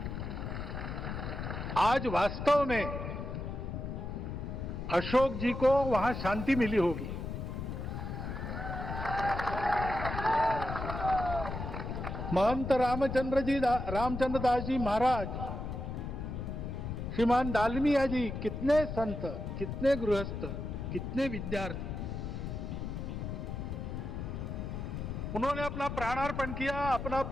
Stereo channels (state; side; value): noise; left; rumble, 5 dB below the sound